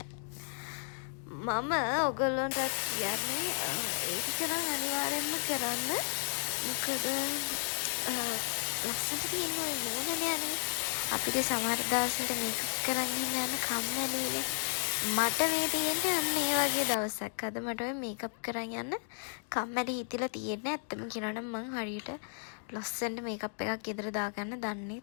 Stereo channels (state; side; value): silent; right; digital silence